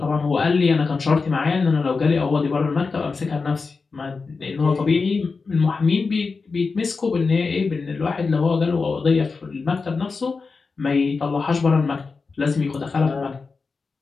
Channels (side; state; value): right; quieter; 4.5 dB